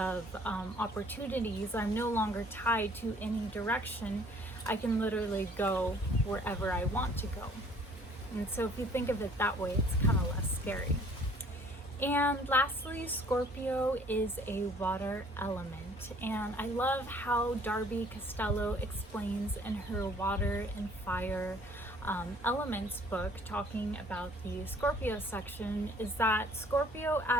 opportunities. I'm no longer tied to any direction. I can literally go wherever I want to go. And so if you think of it that way, it's kind of less scary. And lastly, Scorpio is a water element. And I love how Darby Costello explains in her Water and Fire Elements book, talking about the Scorpio section, is that Scorpio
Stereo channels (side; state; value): both; normal; correlation 0.57